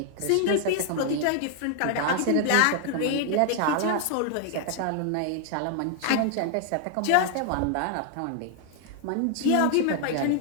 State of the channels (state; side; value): different; both; correlation 0.00